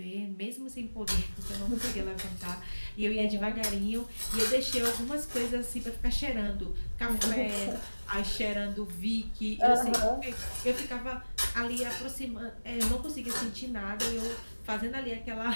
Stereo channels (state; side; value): inverted; both; correlation -1.00